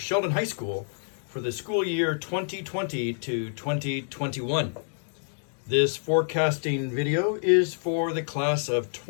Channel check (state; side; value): silent; right; digital silence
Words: High School for the school year 2020 to 2021. This forecasting video is for the class of